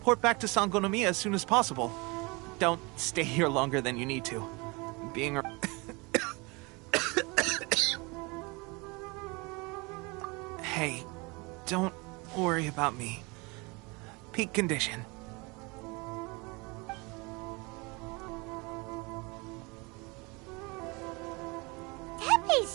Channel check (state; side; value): quieter; left; 27.2 dB